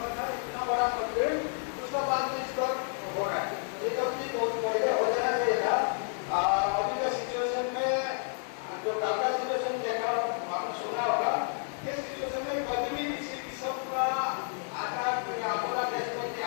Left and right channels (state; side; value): silent; right; 57 dB below the other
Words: इतना बड़ा मॉडल, उसका बाद में इस पर हो रहा है। ये तो भी बहुत पहले हो जाना चाहिए था। अभी के सिचुएशन में जो कल का सिचुएशन देखा आपने सुना होगा, ये सिचुएशन में कभी भी किसी किस्म का आकार या आपदा देश आ